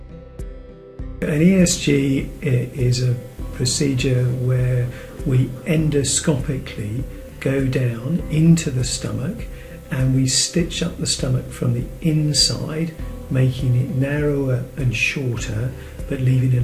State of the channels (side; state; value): both; identical; correlation 1.00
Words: An ESG is a procedure where we endoscopically go down into the stomach and we stitch up the stomach from the inside, making it narrower and shorter, but leaving a